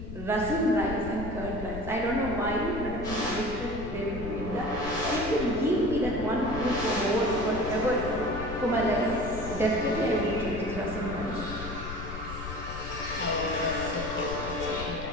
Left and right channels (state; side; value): noise; left; rumble, 8 dB below the sound